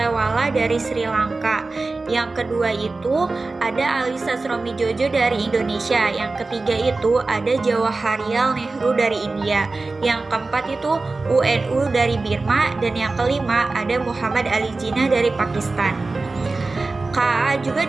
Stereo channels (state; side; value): quieter; left; 3.6 dB